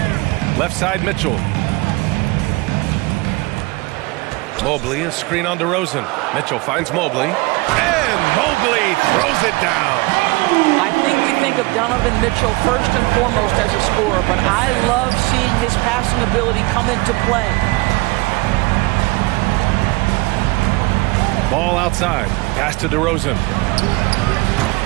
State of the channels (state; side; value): quieter; left; 24.0 dB